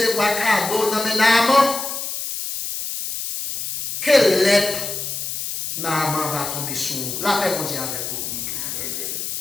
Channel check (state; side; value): noise; left; hiss, 5 dB below the sound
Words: cadeau dans mes Naaman. Quelle lettre Naaman va tomber sur? La paix, on dit avec vous.